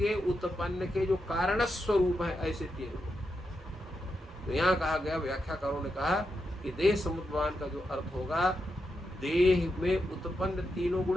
उत्पन्न के जो कारण स्वरूप है ऐसे तीन गुण। तो यहाँ कहा गया, व्याख्याकारों ने कहा कि देह समुद्भवान का जो अर्थ होगा, देह में उत्पन्न तीनों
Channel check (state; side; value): normal; both; correlation 0.85